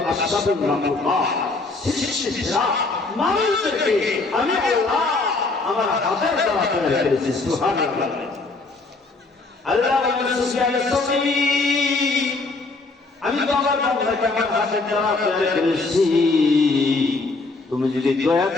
আসবাবুল মাখলুকাত সৃষ্টিরা মানুষদেরকে আমি আল্লাহ আমার হাতের দ্বারা তৈরি করেছি সুবহানাল্লাহ আল্লাহ বলেন সুবহানাল্লাহ আমি তো আমার বান্দাকে আমার হাতের দ্বারা তৈরি করেছি তুমি যদি দয়া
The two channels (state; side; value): quieter; right; 3.6 dB